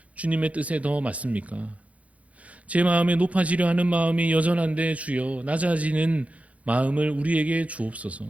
주님의 뜻에 더 맞습니까? 제 마음에 높아지려 하는 마음이 여전한데 주여 낮아지는 마음을 우리에게 주옵소서.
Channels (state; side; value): late; left; 0.066 ms